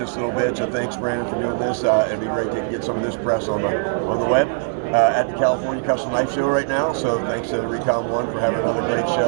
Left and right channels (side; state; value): left; silent; digital silence